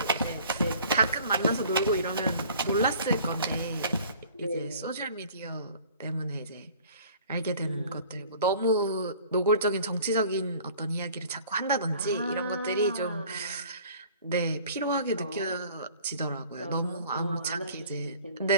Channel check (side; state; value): both; inverted; correlation -0.50